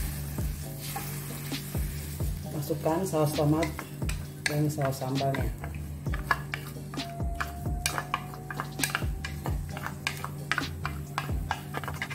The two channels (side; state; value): both; identical; correlation 1.00